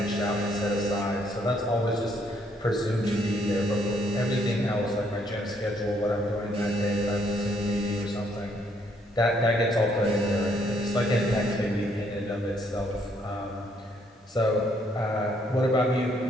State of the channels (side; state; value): both; normal; correlation 0.69